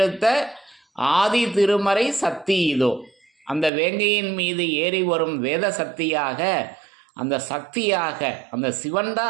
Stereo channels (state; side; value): drops out; left; at 3.7 s